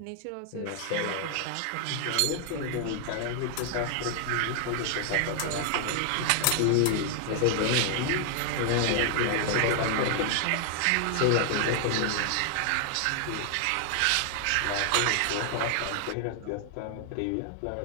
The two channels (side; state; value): both; different; correlation 0.00